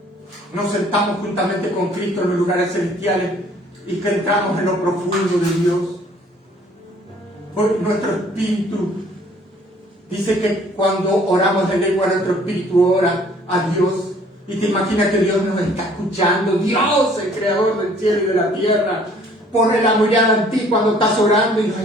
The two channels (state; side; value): normal; both; correlation 0.57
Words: nos sentamos juntamente con Cristo en los lugares celestiales y que entramos en lo profundo de Dios? Porque nuestro espíritu dice que cuando oramos en lengua, nuestro espíritu ora a Dios. Y te imaginas que Dios nos está escuchando. Dios, el creador del cielo y de la tierra, pone la mirada en ti cuando estás orando y nos